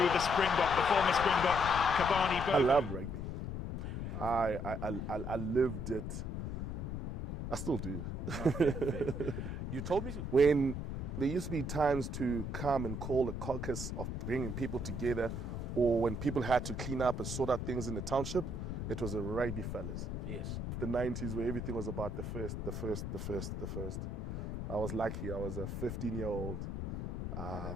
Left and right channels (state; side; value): noise; left; rumble, 4 dB below the sound